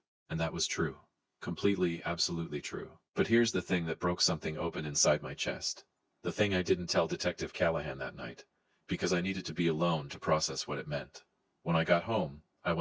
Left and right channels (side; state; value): both; identical; correlation 1.00